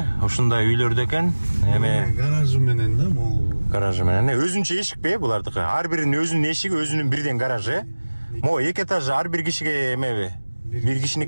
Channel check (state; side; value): inverted; both; correlation -1.00